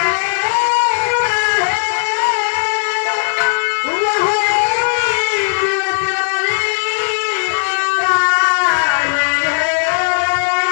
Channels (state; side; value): silent; right; digital silence